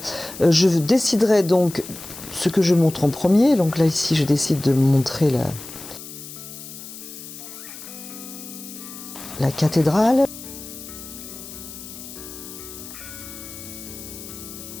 je déciderais donc ce que je montre en premier. Donc là ici je décide de montrer la cathédrale.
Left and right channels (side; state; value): left; noise; hiss, 13 dB below the sound